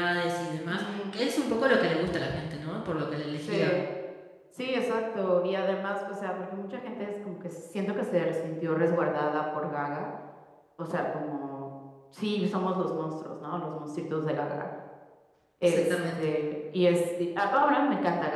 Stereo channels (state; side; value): identical; both; correlation 1.00